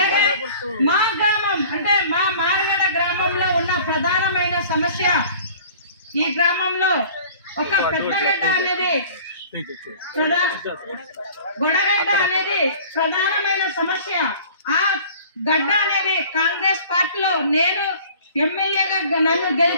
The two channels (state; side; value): inverted; both; correlation -0.47